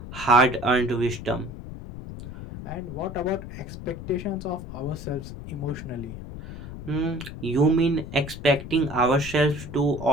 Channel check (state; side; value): noise; left; rumble, 11 dB below the sound